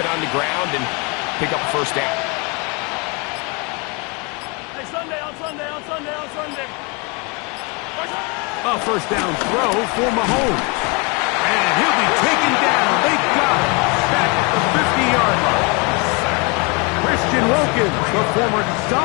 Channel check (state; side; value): quieter; right; 31.0 dB